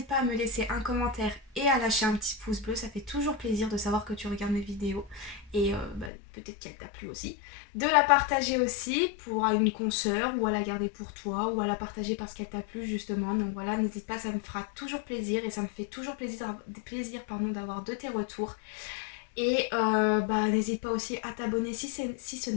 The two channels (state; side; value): drops out; right; at 6.1 s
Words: pas à me laisser un commentaire et à lâcher un petit pouce bleu. Ça fait toujours plaisir de savoir que tu regardes mes vidéos. Et peut-être qu'elle t'a plu aussi. De la partager aussi pour une consoeur ou à la garder pour toi ou à la partager parce qu'elle t'a plu justement. Donc voilà, n'hésite pas, ça me fera toujours plaisir et ça me fait toujours plaisir d'avoir de tes retours. Et n'hésite pas aussi à t'abonner si ce